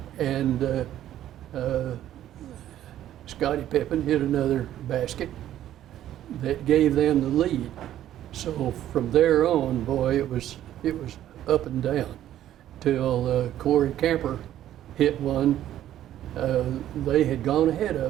And Scottie Pippen hit another basket that gave them the lead. So from there on, boy, it was up and down till Corey Camper hit one. They had gone ahead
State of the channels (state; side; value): quieter; left; 12.1 dB